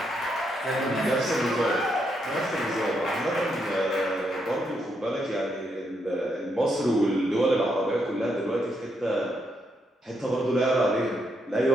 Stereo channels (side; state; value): both; normal; correlation 0.79